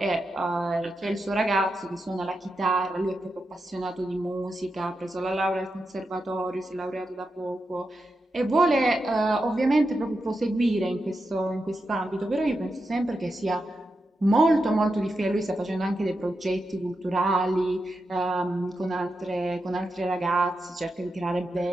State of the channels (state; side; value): normal; both; correlation 0.88